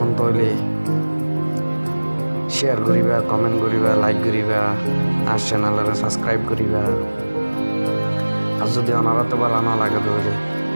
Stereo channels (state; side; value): inverted; both; correlation -1.00